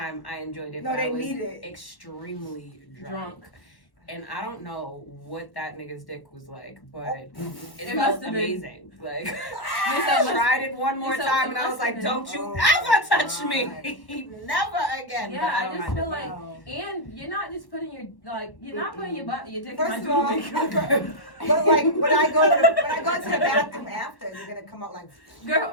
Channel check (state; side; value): late; right; 1.1 ms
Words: I enjoyed it, No, but they I was need it. extremely Drunk. And I don't know what that nigga's dick was like, but it It felt must have been- amazing. Like, Lisa, I tried it one more Lisa, time, it and I was must like, have "Don't been- you Oh ever my touch God. me, never again." Yeah, But I don't just mind feel it. like, Wow. and you're not just putting your you're not putting your dick First in of my all, doobie. but like when I go to the bathroom after, you're gonna come out like